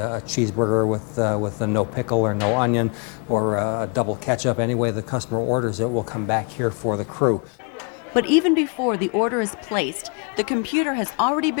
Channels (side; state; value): right; quieter; 34.5 dB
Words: cheeseburger with a no pickle or no onion, or a double ketchup. Any way the customer orders it will come back here for the crew. But even before the order is placed, the computer has already